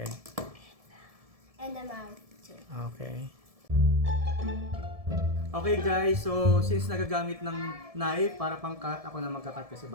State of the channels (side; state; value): left; late; 1.7 ms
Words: and the mouth too. Okay. Okay guys, so since nagagamit ng knife para pang cut, ako na magka-cut kasi